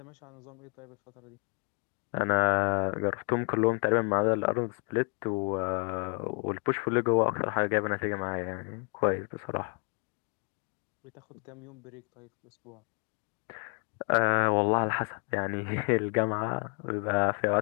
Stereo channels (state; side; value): quieter; right; 38.4 dB